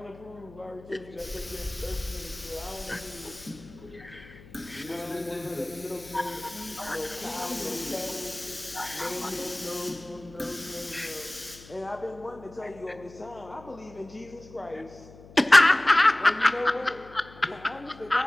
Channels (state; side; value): noise; left; hum, 20 dB below the sound